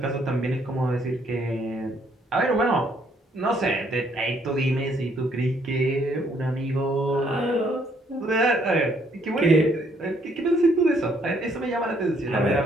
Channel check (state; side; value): normal; both; correlation 0.68